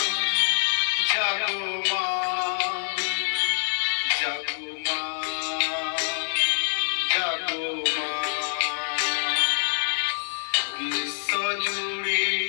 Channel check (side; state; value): right; silent; digital silence